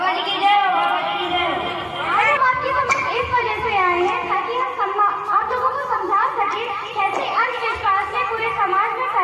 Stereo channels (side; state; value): both; identical; correlation 1.00